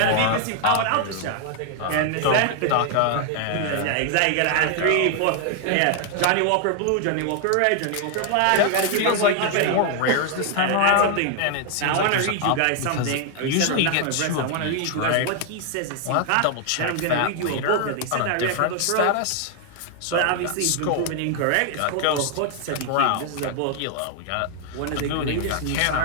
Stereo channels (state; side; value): different; both; correlation 0.00